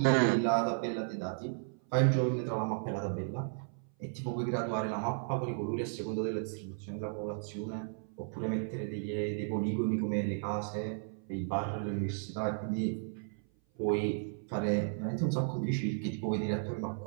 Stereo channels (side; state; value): left; silent; 55 dB below the other